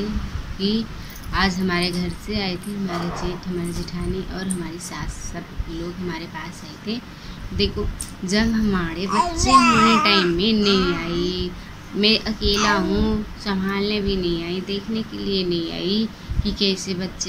कि आज हमारे घर से आए थे हमारे जेठ, हमारी जेठानी और हमारी सास, सब लोग हमारे पास आए थे। देखो, जब हमारे बच्चे होने टाइम में नहीं आई, मैं अकेला हूँ, संभालने भी नहीं आई, देखने के लिए नहीं आई कि कैसे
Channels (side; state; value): both; identical; correlation 1.00